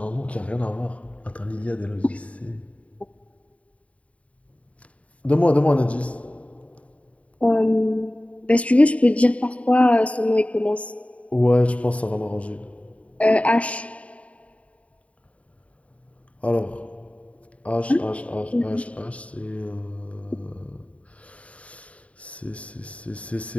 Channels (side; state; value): right; late; 0.065 ms